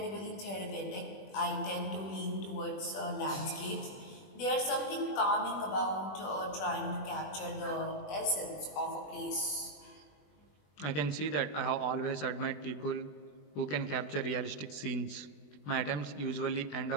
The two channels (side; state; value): right; late; 20 ms